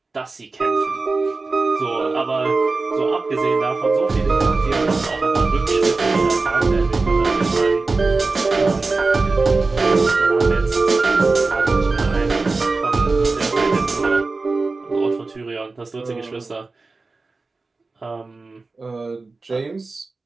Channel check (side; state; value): left; quieter; 3.8 dB